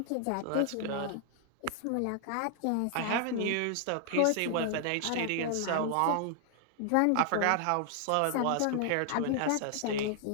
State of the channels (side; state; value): both; different; correlation 0.00